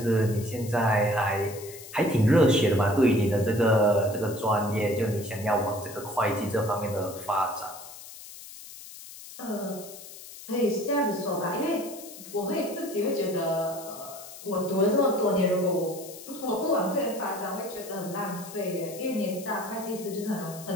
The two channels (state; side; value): noise; left; hiss, 15 dB below the sound